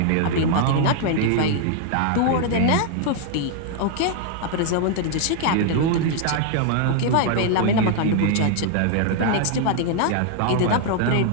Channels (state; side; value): different; both; correlation 0.00